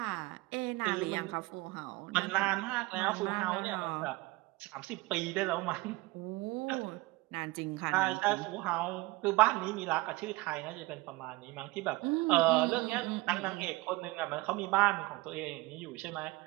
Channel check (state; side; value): quieter; left; 21.9 dB